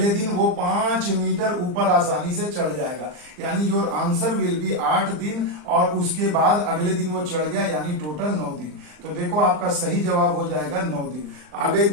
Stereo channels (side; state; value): left; late; 39 ms